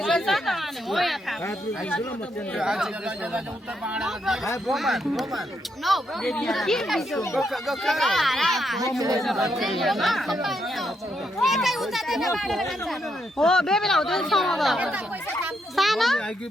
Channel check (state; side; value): normal; both; correlation 0.78